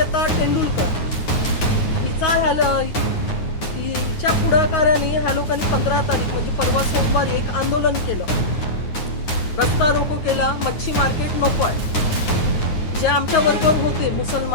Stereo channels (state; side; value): late; right; 9.5 ms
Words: टेंडुलकर हिच्या पुढाकाराने ह्या लोकांनी 15 तारीख म्हणजे परवा सोमवारी एक आंदोलन केलं, रस्ता रोको केला, मच्छी मार्केट नको आहे. जे आमच्या बरोबर होते